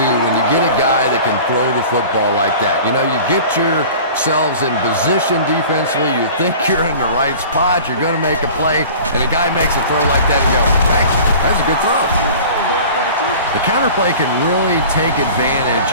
when you get a guy that can throw the football like that. You know, you get yourselves in position defensively, you think you're in the right spot, you're going to make a play, and a guy makes a throw like that and go, hey, that's a good throw. The counterplay can really take advantage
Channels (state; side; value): inverted; both; correlation -0.42